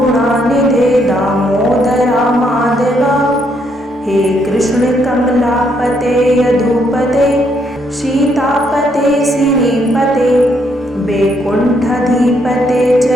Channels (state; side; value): normal; both; correlation 0.73